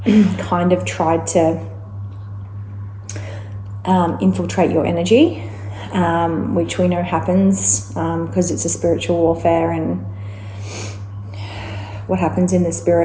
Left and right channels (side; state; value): both; identical; correlation 1.00